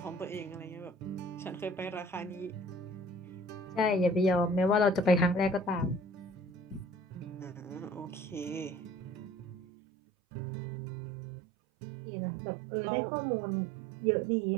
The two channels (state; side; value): drops out; left; at 9.6 s